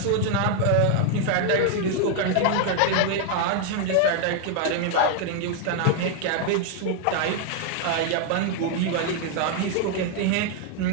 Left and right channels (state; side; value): different; both; correlation 0.00